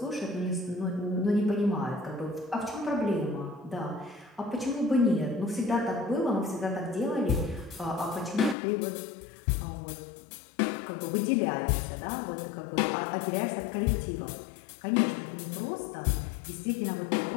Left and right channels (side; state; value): right; drops out; at 8.6 s